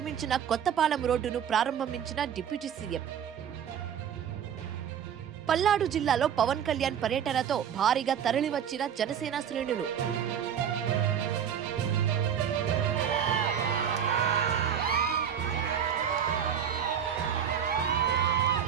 కొత్తపాలెం రోడ్డును ప్రారంభించిన డిప్యూటీ సీఎం. పల్నాడు జిల్లాలో పవన్ కళ్యాణ్ పర్యటనతో భారీగా తరలివచ్చిన జనసేన శ్రేణులు.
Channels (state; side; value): quieter; left; 8.5 dB